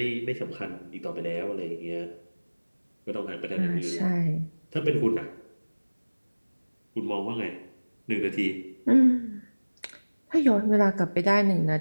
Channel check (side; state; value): both; inverted; correlation -1.00